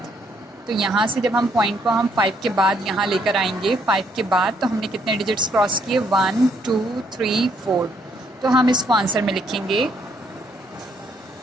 तो यहाँ से जब हम पॉइंट को हम 5 के बाद यहाँ लेकर आएंगे, 5 के बाद तो हमने कितने डिजिट्स क्रॉस किए, 1 2 3 4। तो हम इसको आंसर में लिखेंगे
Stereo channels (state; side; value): normal; both; correlation 0.70